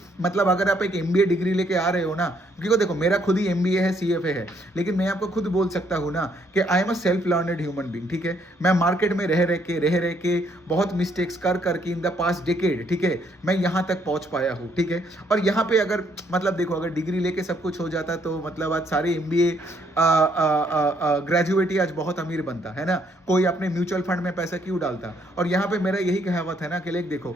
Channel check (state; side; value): normal; both; correlation 0.70